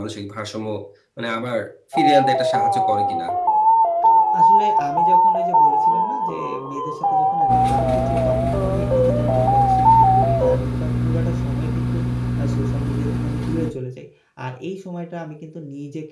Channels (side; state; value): both; identical; correlation 1.00